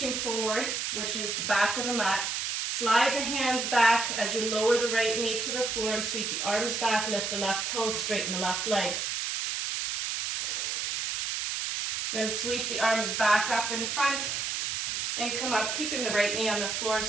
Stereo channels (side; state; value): right; noise; hiss, 1 dB below the sound